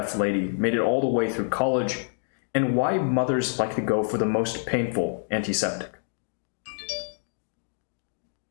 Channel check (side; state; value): right; silent; digital silence